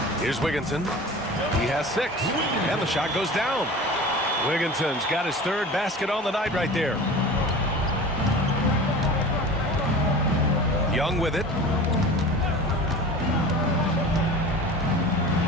Here's Wigginton. He has 6. And the shot goes down. Wigginton's got his 3rd basket on the night right there. Young with it.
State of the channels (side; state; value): both; normal; correlation 0.37